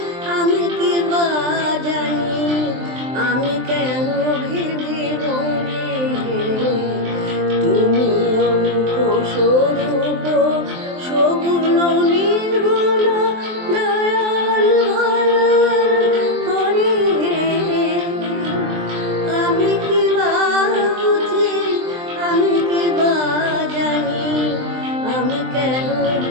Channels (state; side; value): late; left; 23 ms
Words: আমি কি বা জানি, আমি কেন ভেবে মরি হে। তুমি অরূপ স্বরূপ সগুণ নির্গুণ দয়াল ভয়াল হরি হে। আমি কি বা বুঝি, আমি কি বা জানি, আমি কেন